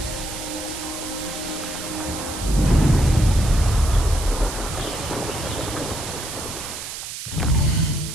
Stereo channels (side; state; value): right; noise; hiss, 8 dB below the sound